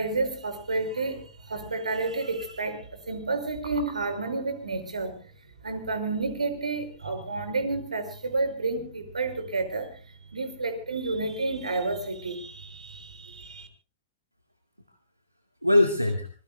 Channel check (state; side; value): inverted; both; correlation -0.72